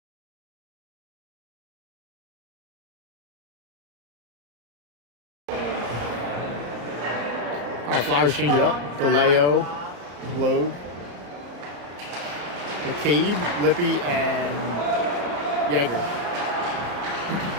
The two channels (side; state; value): left; late; 34 ms